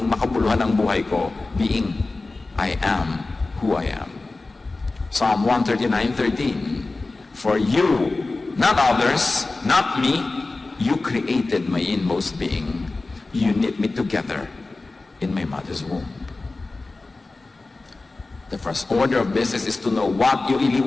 makabuluhan ang buhay ko, being I am who I am. Psalm 139:13, for you, not others, not me, you created my inmost being. You knit me together in my mother's womb. The first order of business is to know what you really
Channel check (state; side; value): quieter; right; 3.4 dB